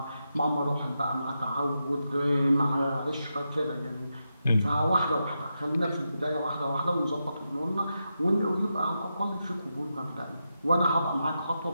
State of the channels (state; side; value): inverted; both; correlation -0.87